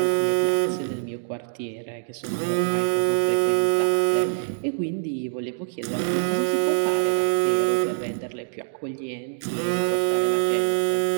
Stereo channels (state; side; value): silent; left; digital silence